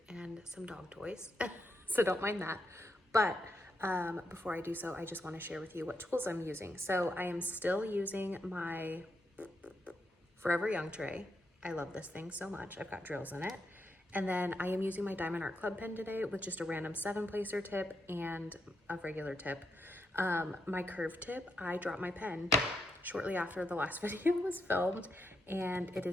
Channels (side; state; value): both; normal; correlation 0.81